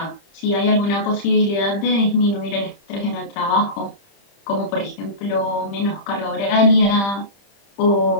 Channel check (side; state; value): right; late; 30 ms